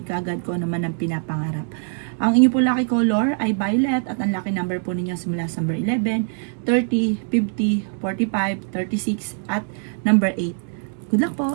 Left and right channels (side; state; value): left; silent; 57 dB below the other